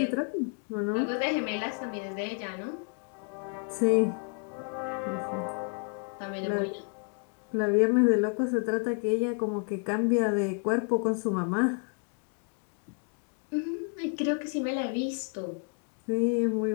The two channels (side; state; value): right; quieter; 36.7 dB